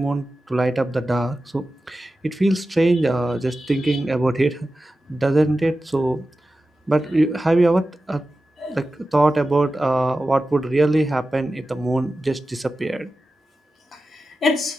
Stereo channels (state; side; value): normal; both; correlation 0.94